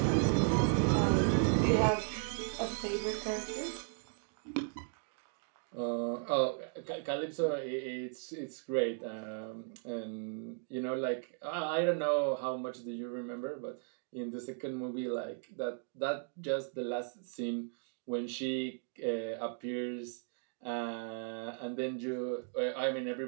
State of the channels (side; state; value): left; silent; 54 dB below the other